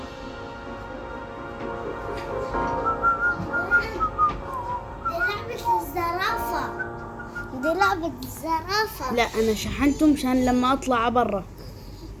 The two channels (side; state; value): both; identical; correlation 1.00